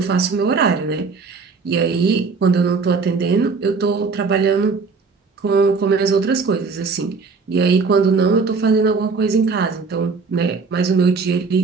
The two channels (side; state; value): left; quieter; 4.6 dB